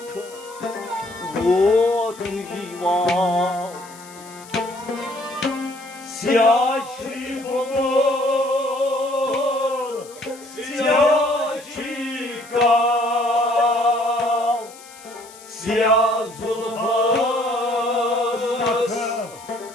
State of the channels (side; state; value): left; noise; hiss, 20 dB below the sound